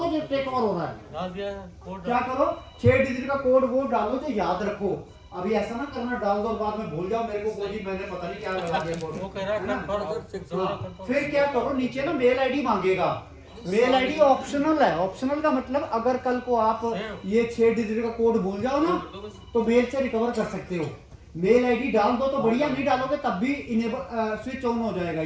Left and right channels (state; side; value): identical; both; correlation 1.00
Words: टेक ओवर हो रहा है। क्या करो, 6 डिजिट का कोड वो डालो जो याद रखो, अभी ऐसा ना करना डाल दो बाद में भूल जाओ, मेरे को कोई मैंने पता नहीं क्या लगा दिया। फिर क्या करो, नीचे ना मेल आईडी मांगेगा, मेल आईडी ऑप्शनल है, ऑप्शनल का मतलब अगर कल को आप ये 6 डिजिट का कोड भूल जाओ ना तो मेल से रिकवर कर सकते हो। मेल आईडी डाल दो तो बढ़िया, नहीं डालोगे तब भी इनेबल स्विच ऑन हो जाएगा।